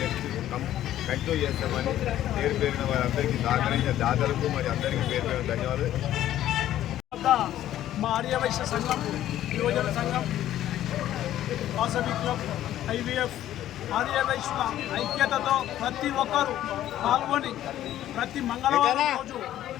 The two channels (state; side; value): quieter; right; 12.6 dB